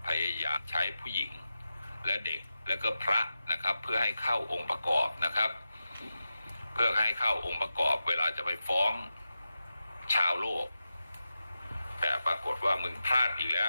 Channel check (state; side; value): inverted; both; correlation -0.91